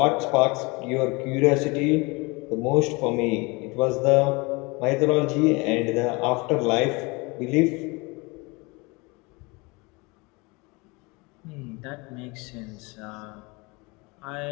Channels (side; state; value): right; quieter; 26.5 dB